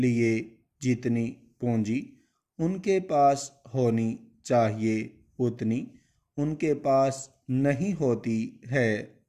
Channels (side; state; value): both; identical; correlation 1.00